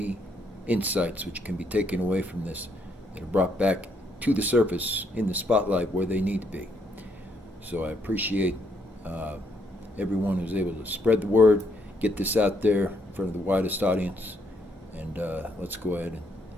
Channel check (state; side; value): normal; both; correlation 0.73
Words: insights which can be taken away from this that are brought back to the surface in the spotlight where they need to be. So I appreciate uh, everyone who's able to spread the word, get this out there in front of the widest audience, and let's go ahead